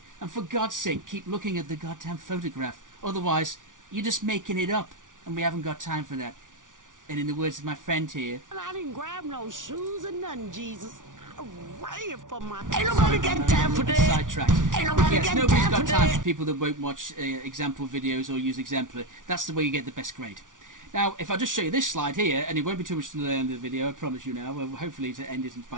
And for God's sake, keep looking at the goddamn photograph. Otherwise, you're just making it up, and we haven't got time for that. And in the words of my friend here, I didn't grab no shoes or nothing, Jesus. I ran for my... Ain't nobody got time for that. Sidetracked. Ain't nobody Yes, got nobody's time got for time that. for people that won't watch example videos or use Exemplar. That's the way you get the best grade. Now, if I just show you this slide here, and it won't be too much to the end of the video, I promise you now. Well, hopefully to end it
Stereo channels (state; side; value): late; left; 0.88 ms